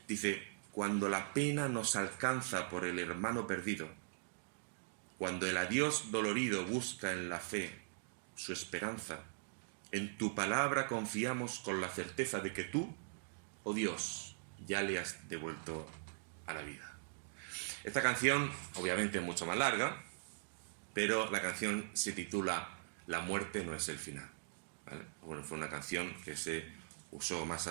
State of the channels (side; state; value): left; silent; digital silence